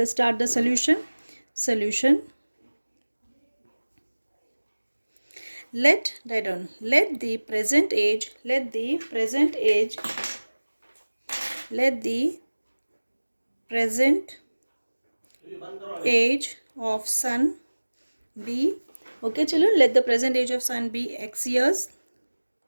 start the solution. Let the present age of son be, okay children, let the present age of son be x years.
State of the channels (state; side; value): inverted; both; correlation -1.00